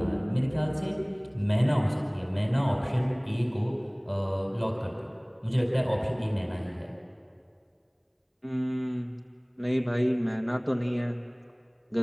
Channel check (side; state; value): both; identical; correlation 1.00